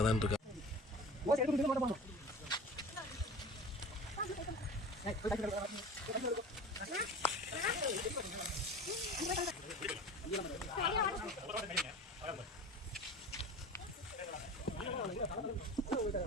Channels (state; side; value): normal; both; correlation 0.36